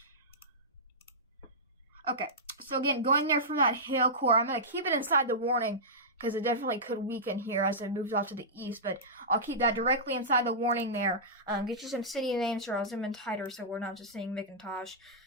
Okay, so again, going there from that hail core, I'm gonna keep it inside the warning, because it definitely could weaken here as it moves off to the east, but I'll keep that directly inside the warning there. Get you some city names here. I'll zoom in tighter so we're not just seeing McIntosh.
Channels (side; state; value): both; normal; correlation -0.15